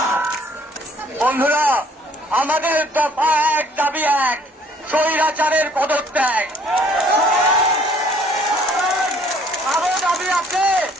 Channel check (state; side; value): normal; both; correlation 0.59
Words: বন্ধুরা, আমাদের দফা এক, দাবি এক, স্বৈরাচারের পদত্যাগ। আরো দাবি আছে,